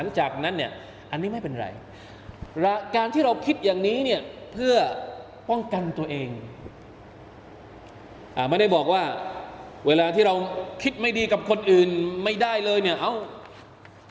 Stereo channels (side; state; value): both; identical; correlation 1.00